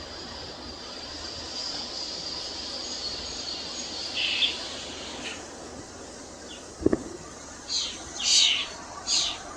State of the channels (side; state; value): both; identical; correlation 1.00